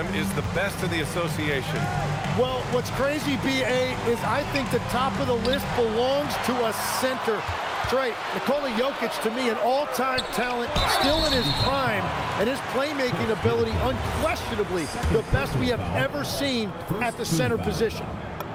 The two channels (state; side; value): identical; both; correlation 1.00